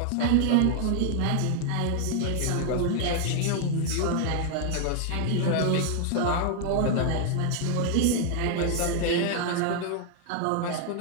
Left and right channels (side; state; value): both; different; correlation 0.00